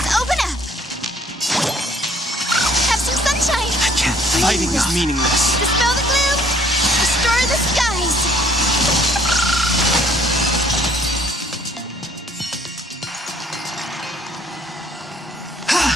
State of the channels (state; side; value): normal; both; correlation 0.60